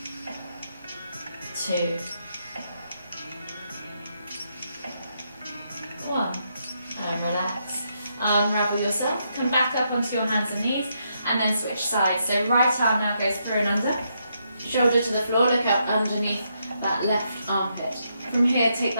2, 1. And relax. Unravel yourself. Come back up onto your hands and knees and then switch sides. So right arm now goes through and under. Shoulder to the floor, look up underneath that left armpit. From here, take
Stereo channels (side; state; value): both; inverted; correlation -0.79